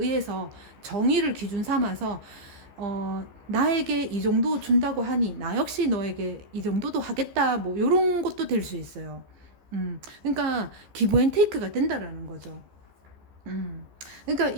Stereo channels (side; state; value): left; late; 14 ms